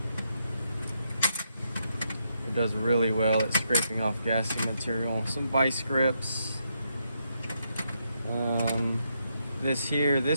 It does really well at scraping off gassy material. Some vice grips.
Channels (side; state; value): both; inverted; correlation -0.79